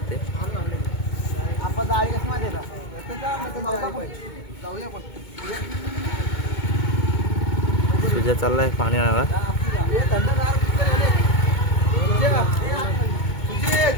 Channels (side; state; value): right; late; 2.2 ms